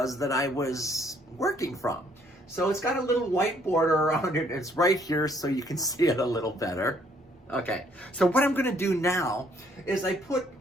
that I was working from. So it's got a little white border around it, it's right here so you can see it a little better. Okay, so what I'm gonna do now is I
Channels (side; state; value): both; normal; correlation 0.65